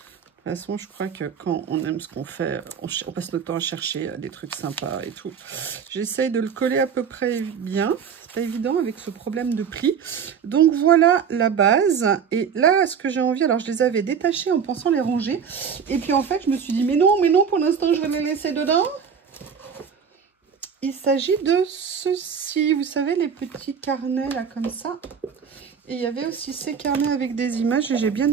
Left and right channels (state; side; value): quieter; left; 7.0 dB